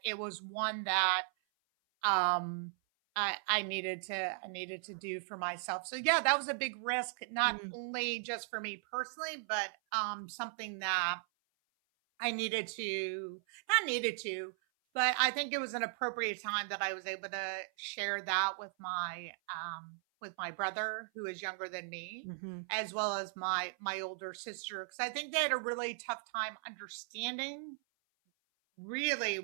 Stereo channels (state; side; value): silent; left; 53 dB below the other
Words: it was one that um I needed to do for myself. So yeah, that was a big risk, not Mm. only just for me personally, but something that I needed to not needed to, but I think it was an appropriate time that I was able to share that with my brother, who is younger than me, Mhm. as well as my older sister, because I think they had a really tough time understanding really